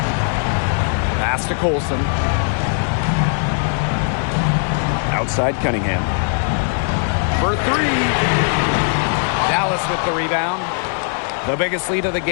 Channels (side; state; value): right; silent; 60 dB below the other